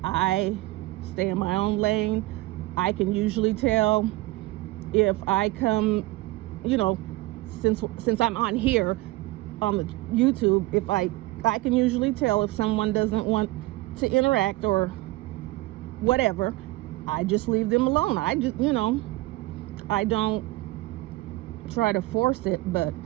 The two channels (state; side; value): quieter; left; 19.5 dB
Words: I stay in my own lane. I can usually tell if I come, since I'm on here on the YouTube, if I can usually tell if someone doesn't want to interact or whatever. I just leave them alone. I just, I don't try to force it, but